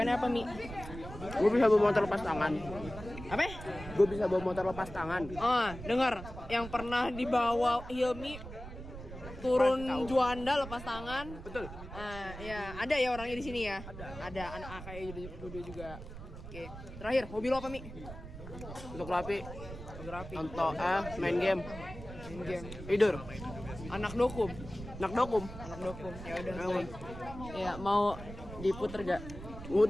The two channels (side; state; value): right; noise; rumble, 12 dB below the sound